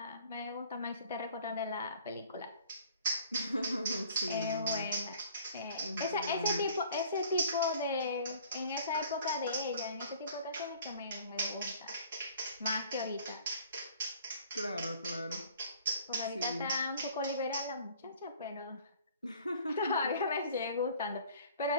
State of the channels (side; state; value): both; inverted; correlation -0.52